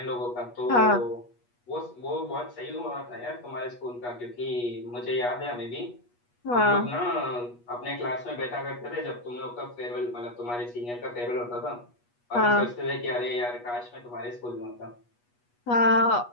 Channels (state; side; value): late; right; 8.3 ms